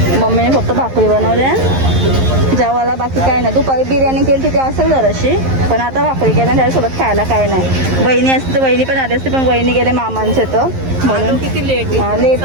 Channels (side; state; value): left; late; 11 ms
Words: मम्मीने फक्त भाकरी बनवल्या जेवायला. बाकी काय नाही. दुपारी बिर्याणी केली तिथे असेल जराशी. पण आता भाकरी केल्या त्याच्यासोबत खायला काय नाही. वहिनी असते तर वहिनी पण आली असते. पण वहिनी गेले मामांचे तर म्हणून लेट